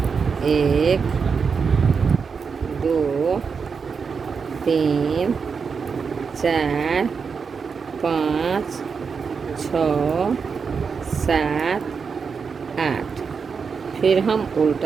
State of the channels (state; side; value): quieter; left; 5.7 dB